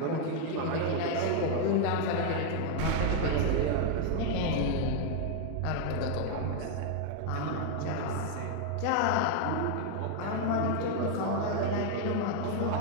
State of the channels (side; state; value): both; different; correlation 0.00